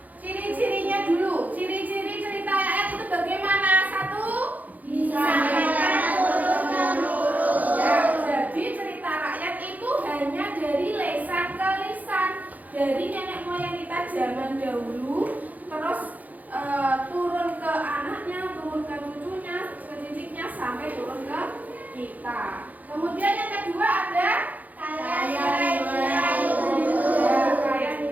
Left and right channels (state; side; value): late; left; 0.079 ms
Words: ciri-cirinya dulu. Ciri-ciri cerita rakyat itu bagaimana? Satu, Disampaikan turun-temurun. ya, jadi cerita rakyat itu hanya dari lesan ke lisan, dari nenek moyang kita zaman dahulu, terus turun ke anaknya, turun ke cucunya, ke cicitnya, sampai turun ke kita. Kemudian yang kedua ada Kaya nilai luhur. ya, kaya